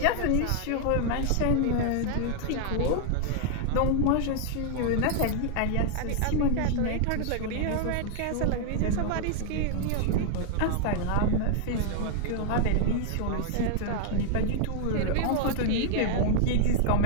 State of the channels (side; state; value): both; different; correlation 0.00